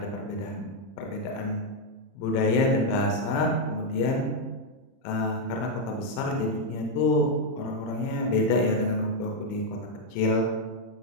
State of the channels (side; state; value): right; late; 30 ms